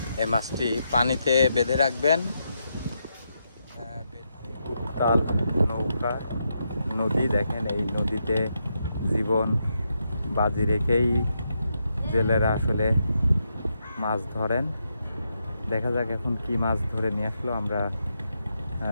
এই মাছটি পানিতে বেঁধে রাখবেন। উত্তাল নৌকা নদী, দেখেন এই নদীতে জীবন বাজি রেখেই জেলেরা আসলে মাছ ধরেন। দেখা যাক এখন কি মাছ ধরে নিয়ে আসলো, আমরা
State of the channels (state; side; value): inverted; both; correlation -0.82